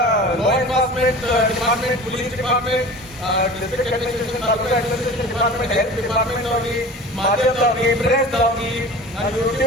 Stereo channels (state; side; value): normal; both; correlation 0.38